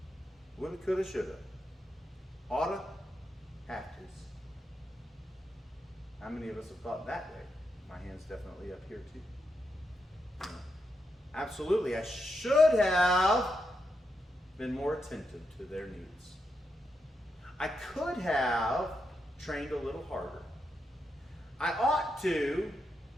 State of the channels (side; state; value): both; normal; correlation 0.84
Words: Would have, could have, should have. Oughta, have to's. How many of us have thought that way? My hand's definitely up here too. You know, absolutely, I should have been more attentive to their needs. I could have trained a little harder. I ought to